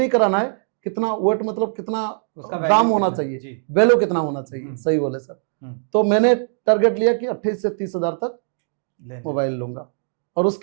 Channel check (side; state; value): left; silent; digital silence